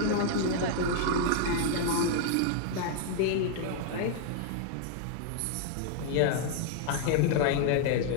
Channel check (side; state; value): both; different; correlation -0.01